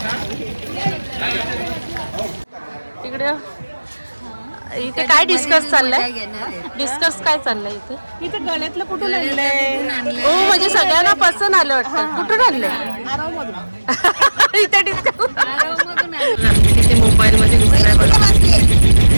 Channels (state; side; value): inverted; both; correlation -1.00